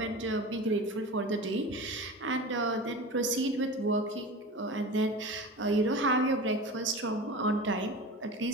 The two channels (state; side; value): normal; both; correlation 0.31